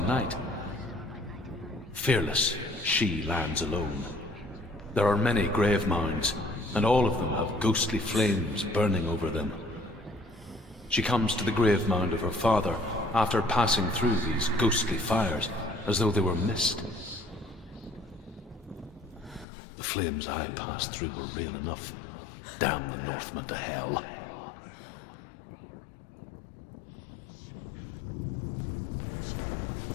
Fearless, she lands alone. There are many grave mounds, and all of them have ghostly flames burning over them. She comes to the grave mound of her father after passing through these ghostly fires as though they were mist. The flames I passed through were real enough. Damn the Northmen to hell.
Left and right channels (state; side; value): drops out; right; at 19.5 s